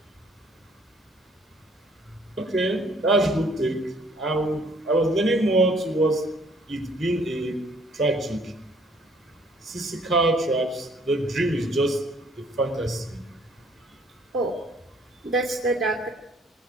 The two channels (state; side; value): normal; both; correlation 0.61